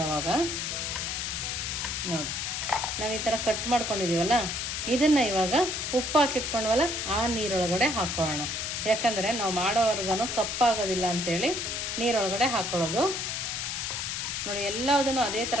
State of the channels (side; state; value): left; noise; hiss, 2 dB below the sound